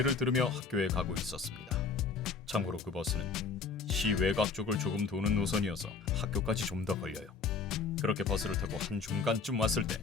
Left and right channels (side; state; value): right; quieter; 5.0 dB